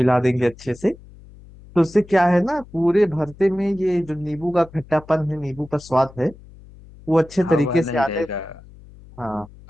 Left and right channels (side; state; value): left; noise; hum, 21 dB below the sound